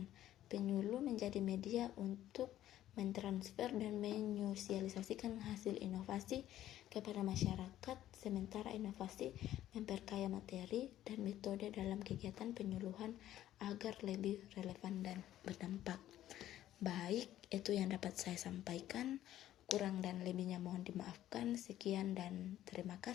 Penyuluh menjadi media untuk mentransfer dan menyosialisasikan hasil inovasi kepada masyarakat, sementara inovasi memperkaya materi dan metode dalam kegiatan penyuluhan agar lebih relevan dan berdampak. Baik, itu yang dapat saya sampaikan. Kurang dan lebihnya mohon dimaafkan. Sekian dan terima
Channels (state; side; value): quieter; right; 12.9 dB